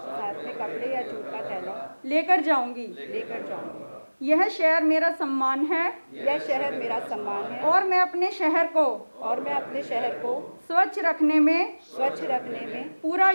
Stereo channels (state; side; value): inverted; both; correlation -1.00